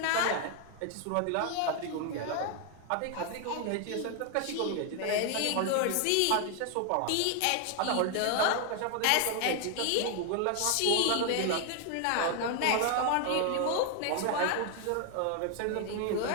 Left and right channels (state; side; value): different; both; correlation 0.00